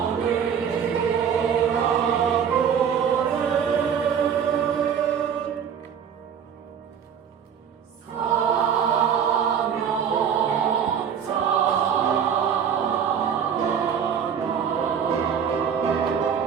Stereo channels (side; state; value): left; quieter; 7.8 dB